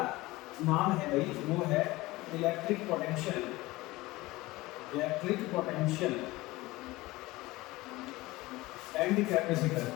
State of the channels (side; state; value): right; quieter; 19.9 dB